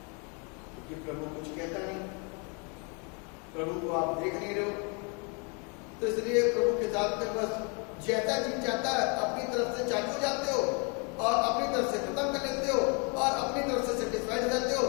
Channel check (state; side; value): quieter; right; 34.7 dB